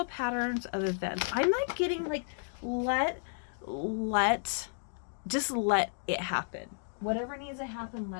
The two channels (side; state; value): right; silent; digital silence